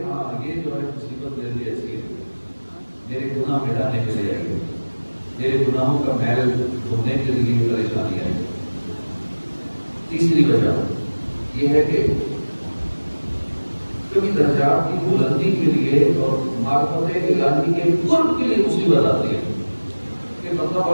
ہاں یہ جو ہے مصیبت میرے لیے ایسی ہے، میرے گناہ مٹانے کے لیے آئی ہے، میرے گناہوں کا میل دھونے کے لیے پریشانی آئی. تیسری وجہ یہ ہے کہ کبھی درجات کی بلندی کے لیے اور معرفت الہی کے قرب کے لیے مصیبت آتی ہے کہ مطلب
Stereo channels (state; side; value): inverted; both; correlation -1.00